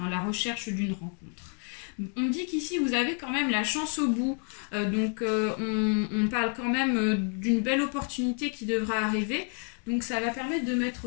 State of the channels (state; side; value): quieter; right; 39.2 dB